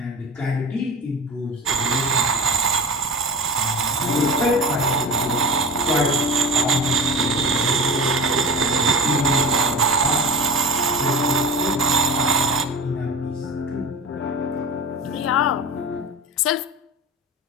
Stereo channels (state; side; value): normal; both; correlation 0.30